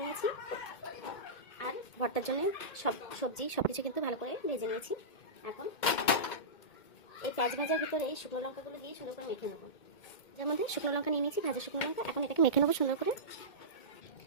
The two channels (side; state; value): right; late; 2.2 ms